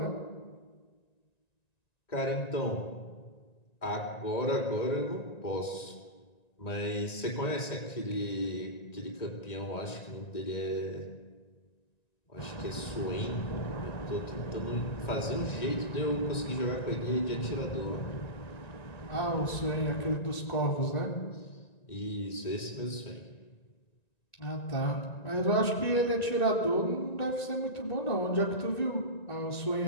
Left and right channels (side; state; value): right; late; 1.9 ms